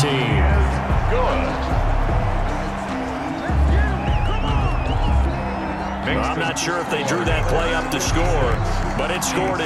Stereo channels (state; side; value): identical; both; correlation 1.00